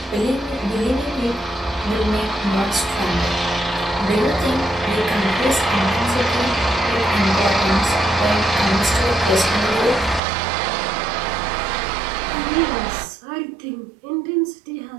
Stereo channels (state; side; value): drops out; left; at 10.2 s